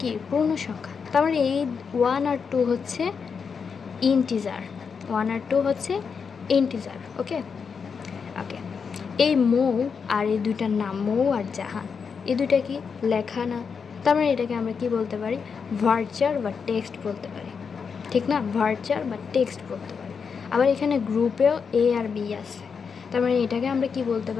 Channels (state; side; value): quieter; right; 5.9 dB